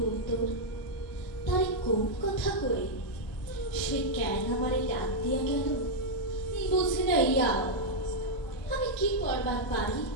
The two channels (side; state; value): both; normal; correlation -0.03